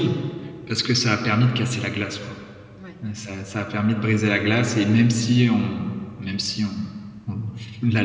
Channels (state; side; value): identical; both; correlation 1.00